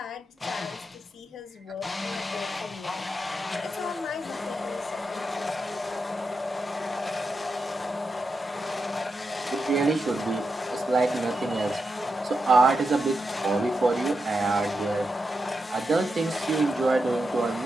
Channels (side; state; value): both; normal; correlation 0.87